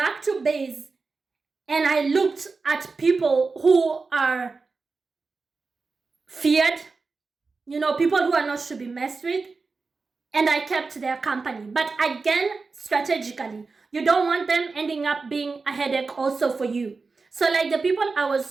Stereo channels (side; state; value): left; quieter; 4.2 dB